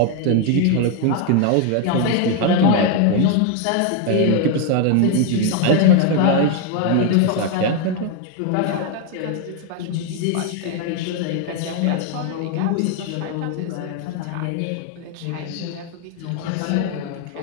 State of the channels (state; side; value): different; both; correlation 0.01